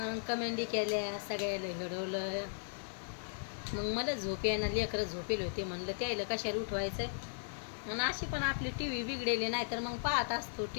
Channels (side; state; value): right; silent; digital silence